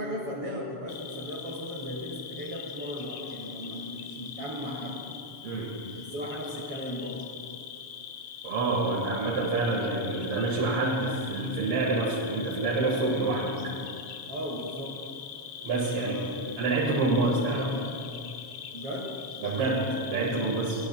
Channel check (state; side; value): late; left; 7.2 ms